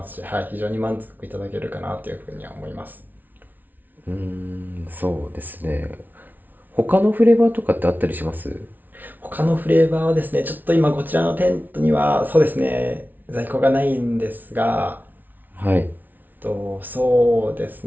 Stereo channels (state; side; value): late; left; 0.084 ms